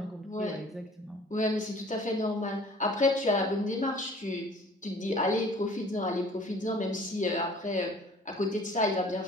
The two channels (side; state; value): both; normal; correlation 0.50